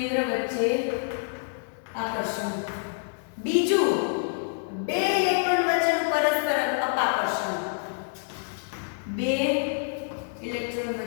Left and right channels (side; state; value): right; silent; 59 dB below the other